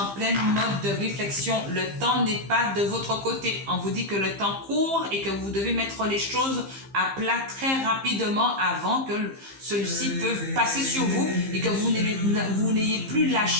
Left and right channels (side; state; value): left; late; 15 ms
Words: pleine mode de réflexion. Le temps n'est pas de votre côté. On vous dit que le temps court et que vous devez mettre les choses à plat très rapidement avant que celui-ci peut passer sur vous et que vous n'ayez plus la